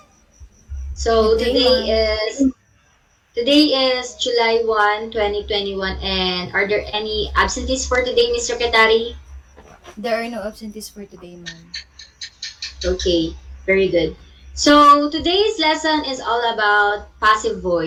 So Good day, ma'am. today is July 1, 2021, and are there any absentees for today, Ms. Secretary? There are no absentees for today, ma'am. Okay, very good. So today's lesson is all about passive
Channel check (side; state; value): both; identical; correlation 1.00